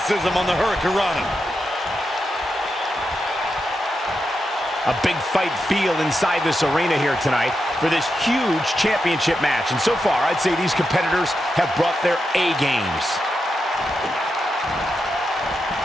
on the hurricanrana. A big fight feel inside this arena here tonight for this huge championship match. And so far, I'd say these competitors have brought their A games.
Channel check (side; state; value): both; normal; correlation 0.87